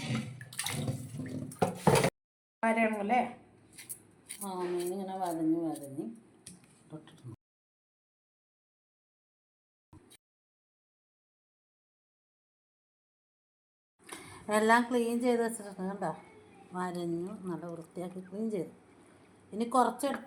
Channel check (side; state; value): both; identical; correlation 1.00